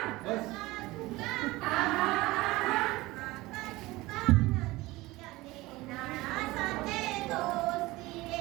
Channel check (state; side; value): quieter; left; 19.9 dB